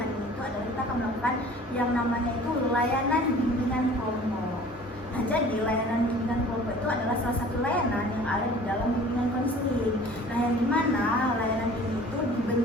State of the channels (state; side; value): normal; both; correlation 0.47